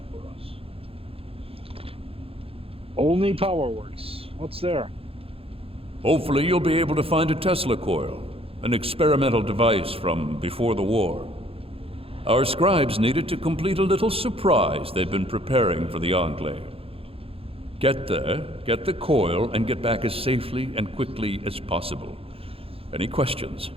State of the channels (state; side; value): late; left; 0.27 ms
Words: Olney Power Works. What's there? Hopefully you'll be able to find a Tesla coil, an experimental device from before the war. Our scribes needed to complete a little surprise they've been preparing for the Enclave. Get there, get the coil, and get back as safely and quickly as possible. Any questions?